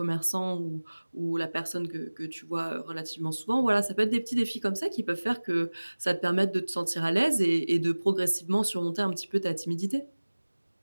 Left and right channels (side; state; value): both; inverted; correlation -1.00